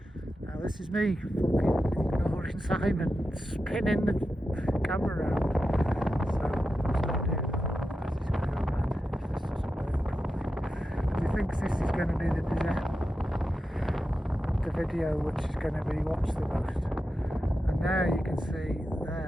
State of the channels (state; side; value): normal; both; correlation 0.90